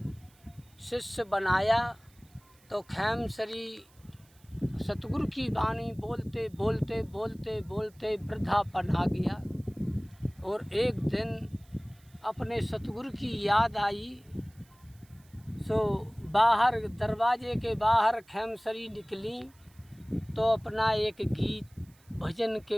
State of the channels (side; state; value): right; noise; hiss, 30 dB below the sound